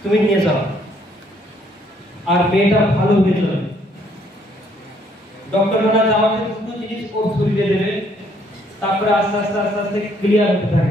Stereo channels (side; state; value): both; normal; correlation 0.66